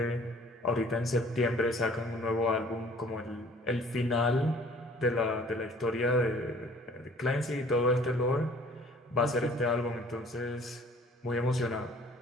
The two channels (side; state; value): both; normal; correlation 0.53